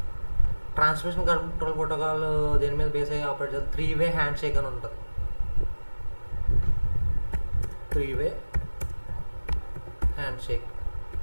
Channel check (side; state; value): both; inverted; correlation -1.00